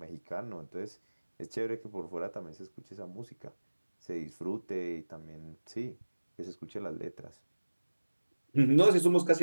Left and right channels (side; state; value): both; inverted; correlation -1.00